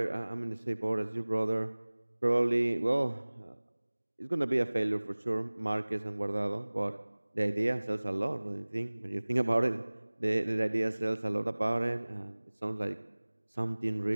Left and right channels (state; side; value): inverted; both; correlation -1.00